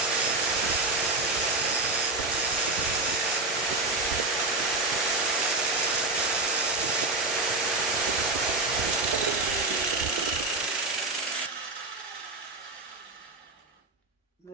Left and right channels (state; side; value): quieter; left; 3.1 dB